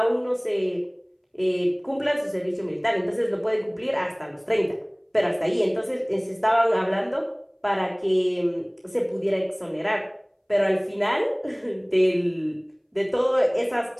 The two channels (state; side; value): identical; both; correlation 1.00